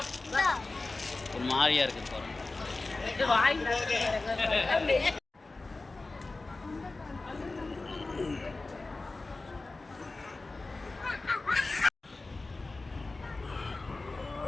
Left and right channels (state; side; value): quieter; right; 3.4 dB